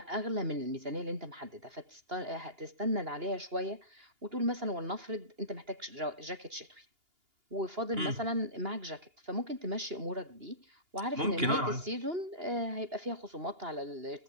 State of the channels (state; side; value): late; left; 2.8 ms